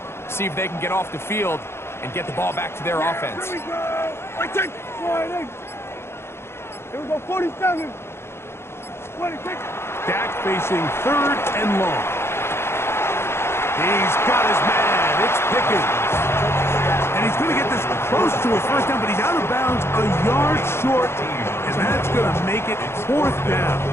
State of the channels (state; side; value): late; right; 0.12 ms